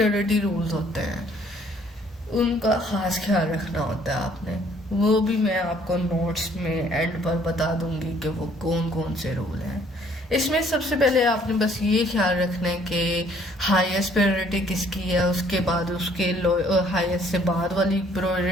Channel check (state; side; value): normal; both; correlation 0.61